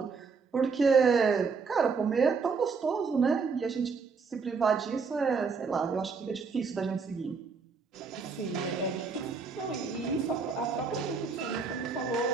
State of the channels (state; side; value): quieter; left; 5.0 dB